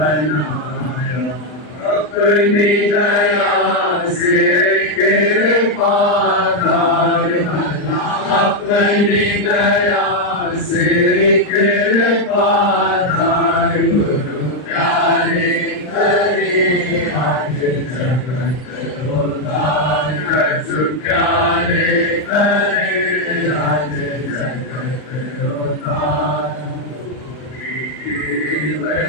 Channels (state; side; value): late; right; 39 ms